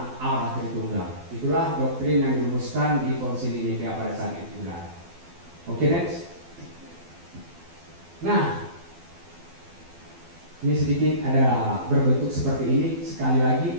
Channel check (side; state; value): left; late; 12 ms